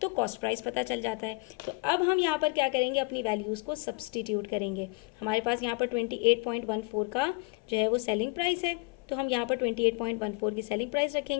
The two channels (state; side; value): quieter; right; 27.7 dB